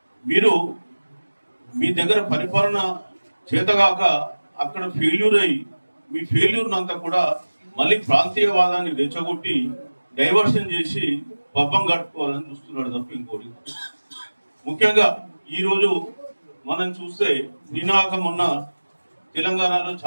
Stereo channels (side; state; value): both; inverted; correlation -1.00